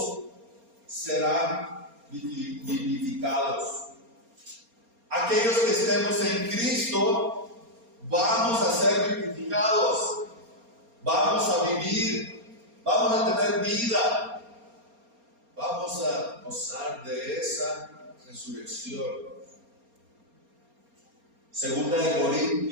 serán vivificados. Aquellos que estemos en Cristo vamos a ser vivificados, vamos a vivir, vamos a tener vida, vamos a gozar de esa resurrección. Segunda de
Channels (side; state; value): left; late; 4.3 ms